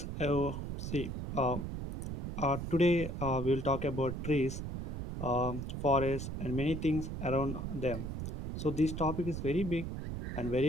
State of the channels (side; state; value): right; noise; rumble, 4 dB below the sound